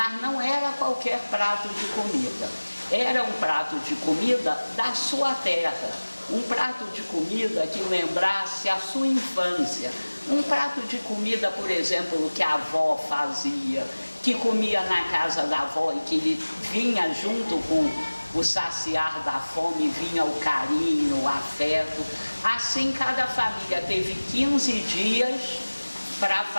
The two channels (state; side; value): inverted; both; correlation -1.00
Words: não era qualquer prato de comida, era um prato de comida da sua terra, um prato de comida que lembrasse a sua infância, um prato de comida, por exemplo, que a avó fazia, que comia na casa da avó e que vinha junto com o saciar da fome, vinha o carinho, o afeto. Assim cada família teve 15 dias para